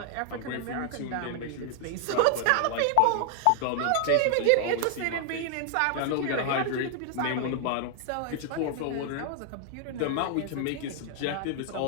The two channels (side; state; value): both; different; correlation 0.00